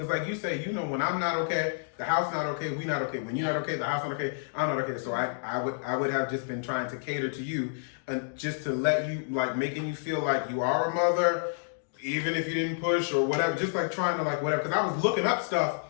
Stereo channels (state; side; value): silent; right; digital silence